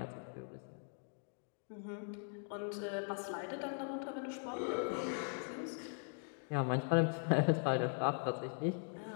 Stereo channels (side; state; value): right; silent; 51 dB below the other